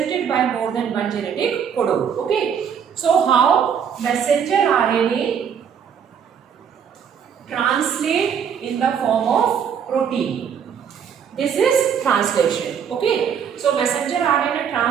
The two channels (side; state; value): left; quieter; 7.7 dB